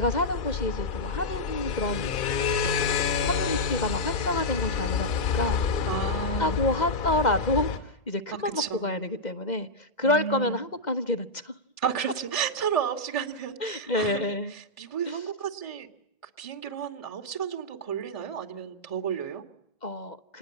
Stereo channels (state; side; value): late; right; 2.0 ms